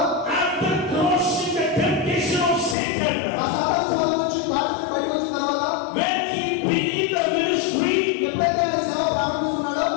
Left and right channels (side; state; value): right; drops out; at 2.8 s